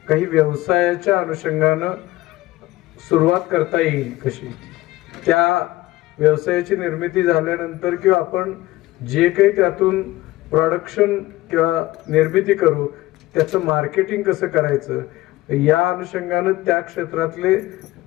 काही व्यवसायाच्या अनुषंगानं सुरुवात करता येईल कशी, त्या व्यवसायाची निर्मिती झाल्यानंतर किंवा आपण जे काही त्यातून प्रोडक्शन किंवा निर्मिती करू त्याचं मार्केटिंग कसं करायचं या अनुषंगानं त्या क्षेत्रातले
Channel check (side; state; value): right; quieter; 17.8 dB